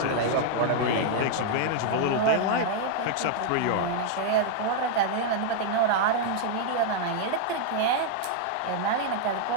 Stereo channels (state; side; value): different; both; correlation 0.00